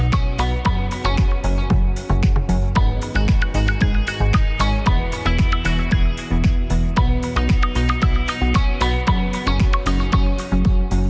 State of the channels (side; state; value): both; identical; correlation 1.00